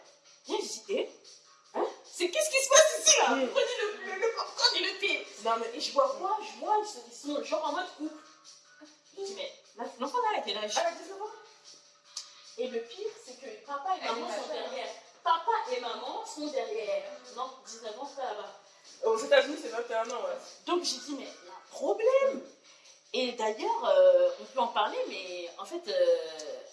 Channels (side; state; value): both; identical; correlation 1.00